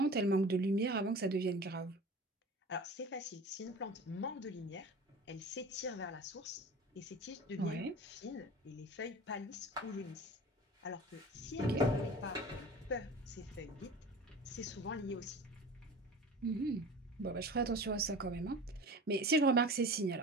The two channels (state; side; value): normal; both; correlation 0.38